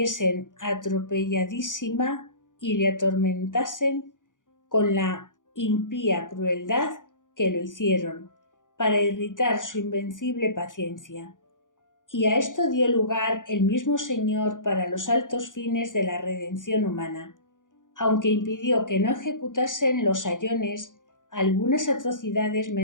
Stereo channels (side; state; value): right; late; 0.88 ms